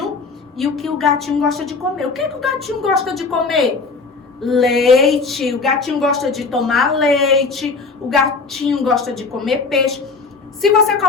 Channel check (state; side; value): quieter; right; 4.4 dB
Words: e o que o gatinho gosta de comer. O que é que o gatinho gosta de comer? Leite. O gatinho gosta de tomar leite. O gatinho gosta de comer peixe. Se você